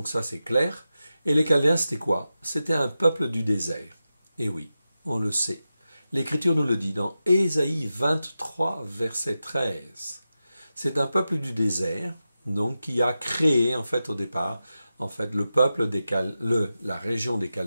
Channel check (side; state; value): both; inverted; correlation -0.92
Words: ça, c'est clair. Et les Chaldéens, c'était quoi? C'était un peuple du désert. Et oui, on le sait. L'Écriture nous le dit dans Ésaïe 23, verset 13. C'est un peuple du désert, donc qui a créé, en fait, au départ, en fait, le peuple la région des